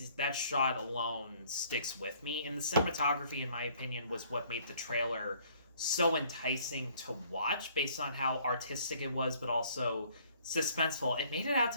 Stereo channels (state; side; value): inverted; both; correlation -0.60